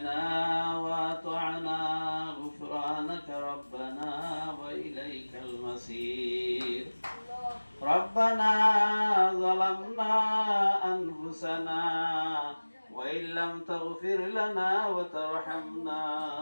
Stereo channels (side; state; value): both; inverted; correlation -1.00